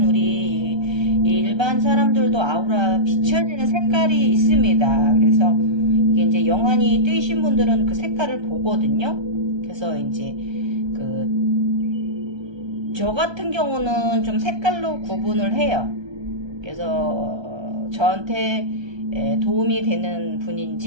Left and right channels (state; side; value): late; left; 1.3 ms